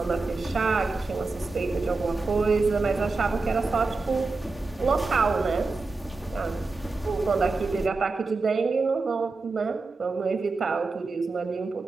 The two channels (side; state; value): left; quieter; 3.8 dB